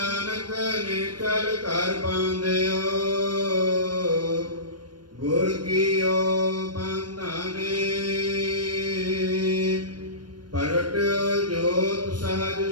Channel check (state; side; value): late; left; 0.71 ms